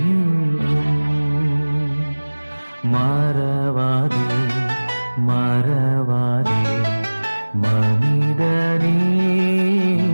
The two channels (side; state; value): both; inverted; correlation -1.00